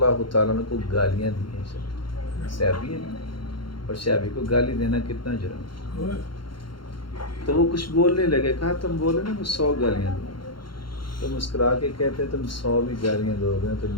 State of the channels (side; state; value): right; late; 0.73 ms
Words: تعالیٰ عنہ کو گالیاں دی ہیں صحابی ہے، اور صحابی کو گالی دینا کتنا جرم ہے. تو وہ کچھ بولنے لگے، کہا تم بولے نا میں 100 گالیاں دوں گا. تو مسکرا کے کہتے تم 100 بھی گالیاں دو گے تو